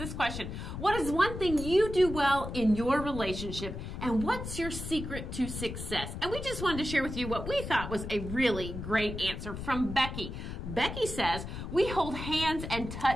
question: what is one thing you do well in your relationship, and what's your secret to success? And we just wanted to share with you what we thought was a really great answer from Becky. Becky says, we hold hands and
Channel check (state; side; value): noise; left; rumble, 7 dB below the sound